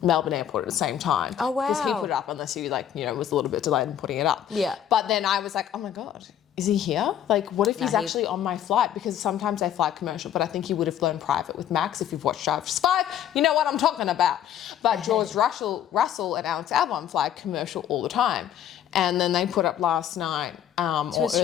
Melbourne Airport at the same time. Oh, wow. Because he put it up unless he was a little bit delayed in putting it up. Yeah. But then I was like, oh my God, is he here? Like, what if he's he- actually on my flight? Because sometimes they fly commercial, but I think he would have flown private with Max. If you've watched Drive to Survive, you know what I'm talking about. But George Russell and Alex Albon fly commercial all the time. And then they put up last night or early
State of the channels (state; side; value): quieter; right; 10.2 dB